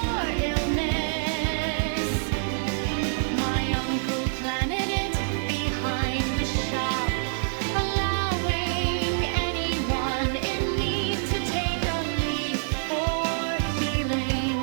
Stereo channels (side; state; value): left; silent; 57 dB below the other